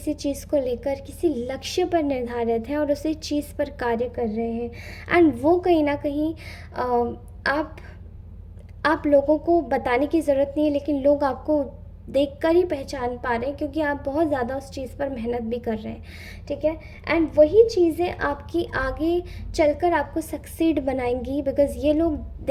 चीज़ को लेकर किसी लक्ष्य पर निर्धारित हैं और उसी चीज़ पर कार्य कर रहे हैं। एंड वो कहीं ना कहीं आप आप लोगों को बताने की ज़रूरत नहीं है, लेकिन लोग आपको देखकर ही पहचान पा रहे हैं क्योंकि आप बहुत ज़्यादा उस चीज़ पर मेहनत भी कर रहे हैं, ठीक है। एंड वही चीज़ें आपकी आगे चलकर आपको सक्सीड बनाएंगी, बिकॉज़ ये लोग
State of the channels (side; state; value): both; identical; correlation 1.00